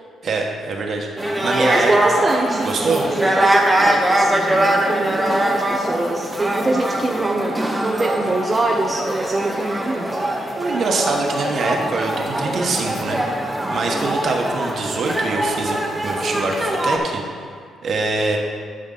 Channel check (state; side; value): normal; both; correlation 0.86